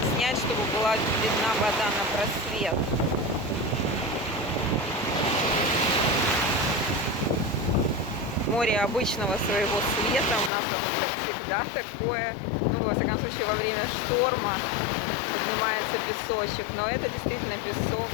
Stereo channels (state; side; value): drops out; right; at 10.5 s